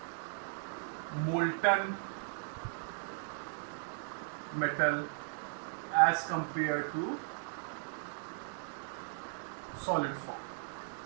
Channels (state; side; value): silent; left; digital silence